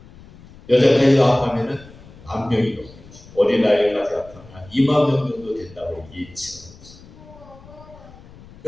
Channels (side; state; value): left; noise; rumble, 21 dB below the sound